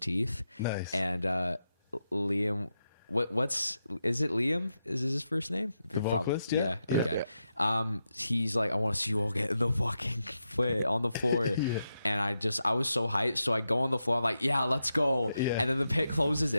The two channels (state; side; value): inverted; both; correlation -0.87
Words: Nice. And Liam, is it Liam? Is his first name? The vocalist? Yeah. Yeah. Okay. He's like, I want to see you all get in the fucking foot on the floor. Yeah. And I was so hyped. So I go on the floor. I'm like, yeah, let's go. Yeah. And then the pit closes